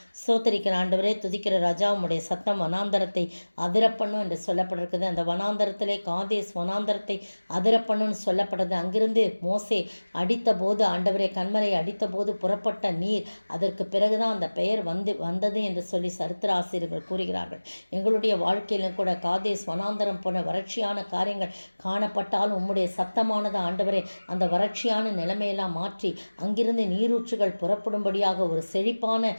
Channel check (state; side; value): inverted; both; correlation -1.00